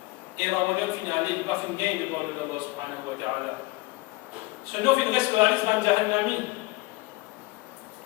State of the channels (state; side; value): quieter; right; 21.8 dB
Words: et Ramadan fin aller, il va fin gagner devant Allah subhanahu wa ta'ala. Ce nom fin reste la liste de Jahannami.